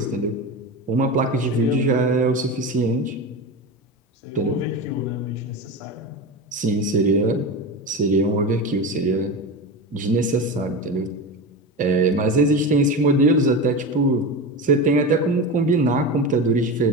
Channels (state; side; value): normal; both; correlation 0.23